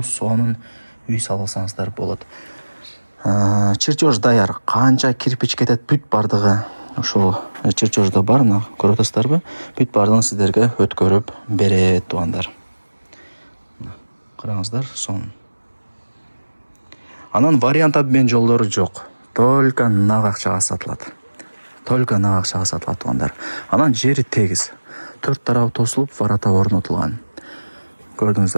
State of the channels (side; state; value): both; inverted; correlation -1.00